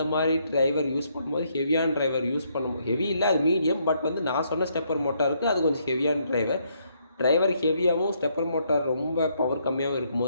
மாதிரி டிரைவர் யூஸ் பண்ணும்போது ஹெவியான டிரைவர் யூஸ் பண்ணும்போது ஹெவி இல்லை, அது மீடியம். பட் வந்து நான் சொன்ன ஸ்டெப்பர் மோட்டாருக்கு அது கொஞ்சம் ஹெவியான டிரைவர் ஹெவியாகவும் ஸ்டெப்பர் மோட்டார் ரொம்ப பவர் கம்மியாகவும்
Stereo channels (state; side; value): inverted; both; correlation -0.72